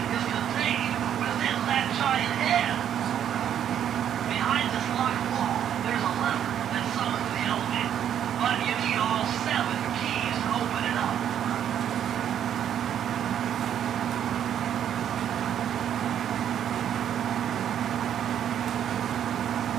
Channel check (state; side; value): quieter; left; 9.7 dB